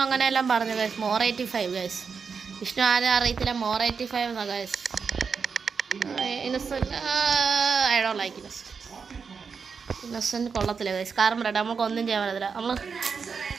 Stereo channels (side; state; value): left; quieter; 5.7 dB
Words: അങ്ങനെയെല്ലാം പറഞ്ഞു ഗൈസ്. More 85 guys. വിഷ്ണു ആരും അറിയത്തില്ല, മോർ 85 എന്നാ guys. Innocent I don't like Innocent കൊള്ളത്തില്ല ഗൈസ്. കാരണം പറയട്ടെ, നമുക്ക് ഒന്നും ചെയ്യാൻ പറ്റത്തില്ല. നമ്മൾ